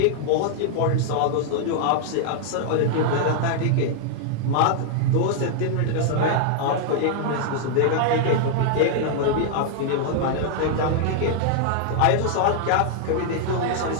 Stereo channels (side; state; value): both; different; correlation 0.00